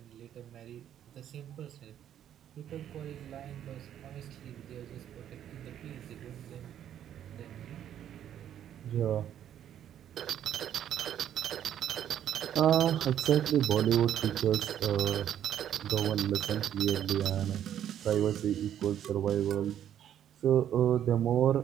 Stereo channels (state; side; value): quieter; left; 10.4 dB